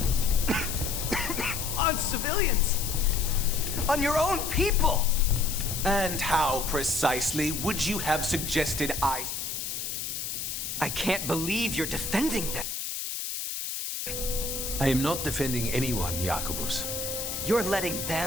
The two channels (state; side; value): noise; left; hiss, 4 dB below the sound